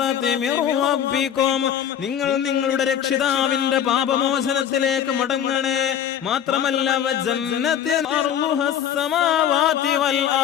മിർ റബ്ബികും. നിങ്ങൾ നിങ്ങളുടെ രക്ഷിതാവിന്റെ പാപമോചനത്തിലേക്ക് മടങ്ങണേ. മാത്രമല്ല വജന്നത്തിൻ അർളുഹസ് സമാവാതി വൽ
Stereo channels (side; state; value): right; quieter; 9.5 dB